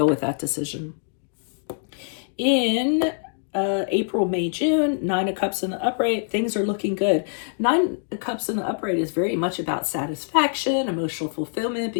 with that decision. In April, May, June, Nine of Cups in the upright, things are looking good. Nine of Cups in the upright is very much about satisfaction, emotional fulfillment,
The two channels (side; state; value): right; silent; digital silence